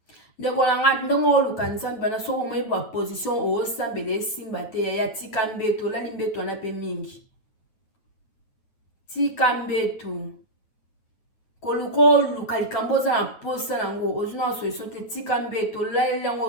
ndeko na nga ndongo luka nzambe bana so mo ba position o sambele simba te ya tika mbeto la limbeto na pe mingi tika mbeto koluko kalikamboza na posa nango ozuna solution te tika mbeto lalela ngo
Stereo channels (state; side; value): late; right; 9.2 ms